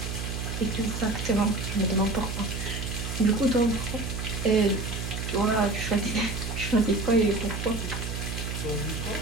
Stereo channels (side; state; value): right; noise; hum, 4 dB below the sound